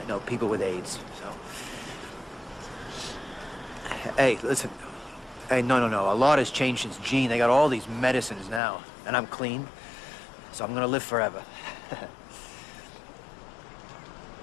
You know, people with AIDS, so. Hey, listen. Hey, no. A lot has changed since Gene. They got all these medicines now. And I'm clean, so I'm gonna live forever.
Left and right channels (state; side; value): drops out; right; at 8.6 s